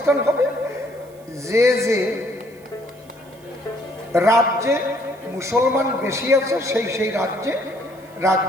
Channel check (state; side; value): noise; right; hiss, 28 dB below the sound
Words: হবে? যে যে রাজ্যে মুসলমান বেশি আছে সেই সেই